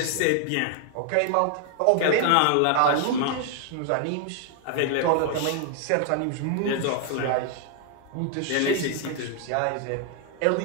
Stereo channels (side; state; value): both; different; correlation 0.00